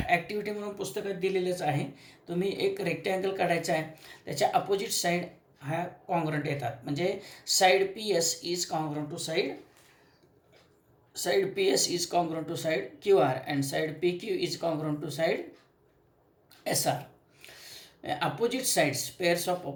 म्हणून पुस्तकात दिलेलंच आहे. तुम्ही एक रेक्टँगल काढायचा आहे, त्याच्या अपोजिट साईड ह्या कॉन्ग्रंट येतात. म्हणजे side P S is congruent to side P S is congruent to side Q R, and side P Q is congruent to side S R. Opposite sides, pairs of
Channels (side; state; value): both; identical; correlation 1.00